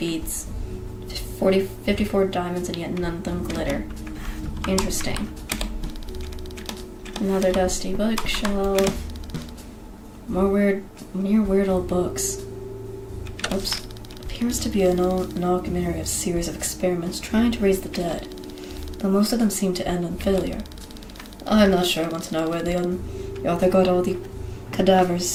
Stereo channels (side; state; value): both; identical; correlation 1.00